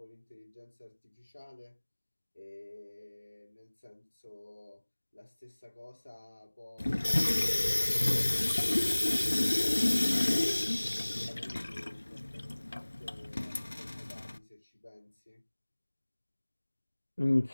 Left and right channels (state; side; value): inverted; both; correlation -1.00